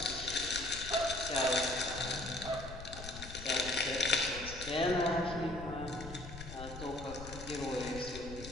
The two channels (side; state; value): left; noise; rumble, 11 dB below the sound